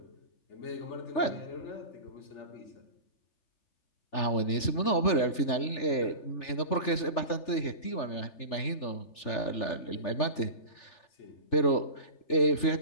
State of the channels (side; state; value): right; late; 3.4 ms